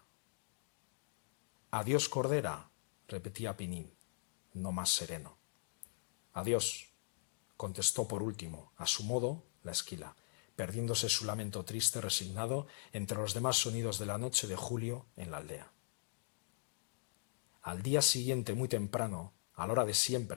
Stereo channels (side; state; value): right; silent; digital silence